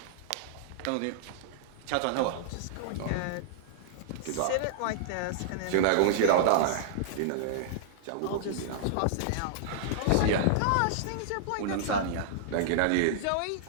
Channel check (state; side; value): different; both; correlation -0.01